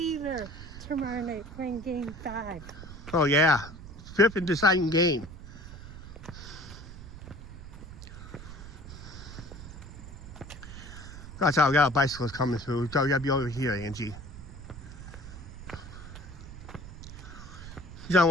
tomorrow night playing Game 5. Oh yeah, 5th and deciding game. That's how we got bicycles coming through. So we gotta be over here, Angie. He's on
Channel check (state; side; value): noise; right; rumble, 13 dB below the sound